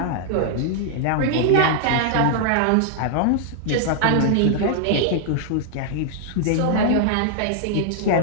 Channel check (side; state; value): both; different; correlation -0.01